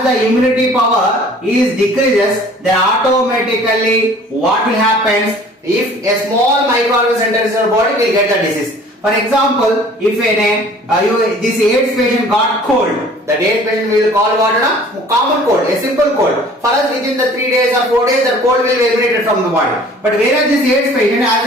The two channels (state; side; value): normal; both; correlation 0.50